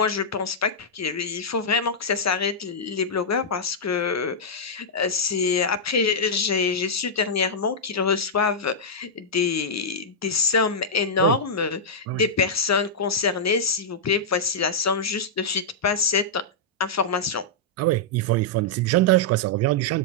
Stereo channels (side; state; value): both; normal; correlation -0.09